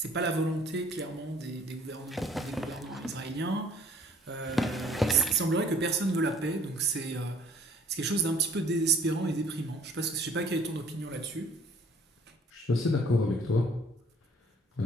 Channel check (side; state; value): both; normal; correlation 0.56